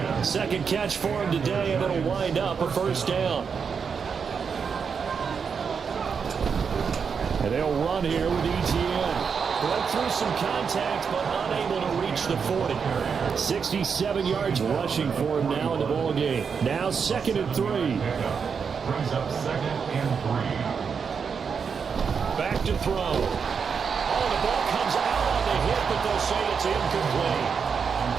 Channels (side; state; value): left; quieter; 6.2 dB